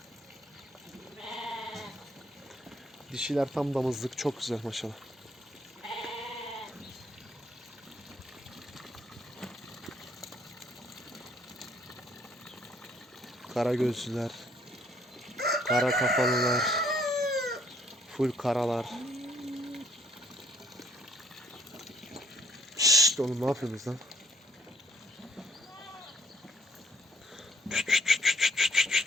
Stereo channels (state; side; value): normal; both; correlation 0.64